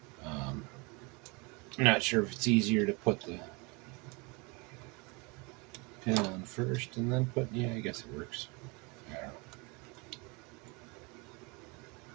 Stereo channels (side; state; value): left; quieter; 28.7 dB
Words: I'm not sure if it's easier to put the pin on first and then put, yeah, I guess it works. I don't know.